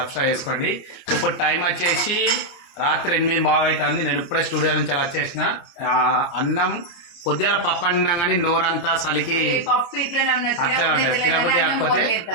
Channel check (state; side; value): late; right; 29 ms